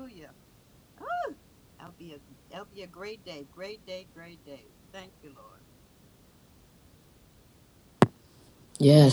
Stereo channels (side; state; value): both; identical; correlation 1.00